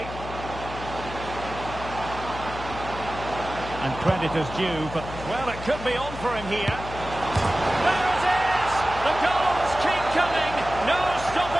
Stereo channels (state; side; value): noise; left; hum, 10 dB below the sound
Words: And credit is due, but, well, it could be on for him here. There it is! The goals keep coming. No